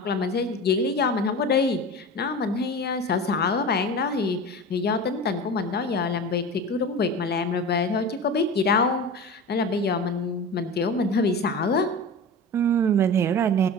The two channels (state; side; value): normal; both; correlation 0.31